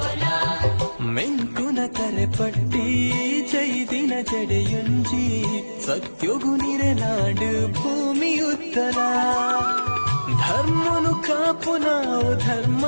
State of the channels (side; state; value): both; inverted; correlation -1.00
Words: ಮೆಂಕುನ ತರೆಪಟ್ಟಿ ಚೈದಿನ ಜಡೆಯುಂಜಿ ಸತ್ಯೊಗು ನಿರೆನಾಡು ಭೂಮಿ ಉತ್ತರ ಧರ್ಮನು ಕಾಪು ನಾವು ಧರ್ಮ